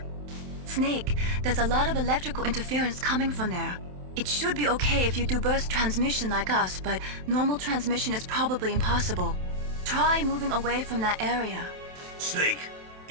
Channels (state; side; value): late; left; 27 ms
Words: Snake, there's a lot of electrical interference coming from there. It should be okay if you do burst transmission like us, but normal transmission is probably impossible. Try moving away from that area. Snake,